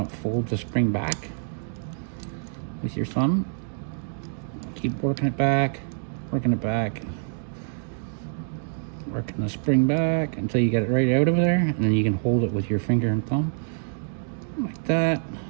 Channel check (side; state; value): left; silent; digital silence